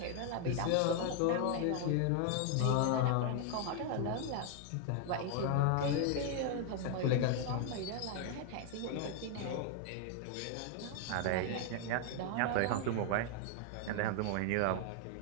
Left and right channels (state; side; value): different; both; correlation 0.00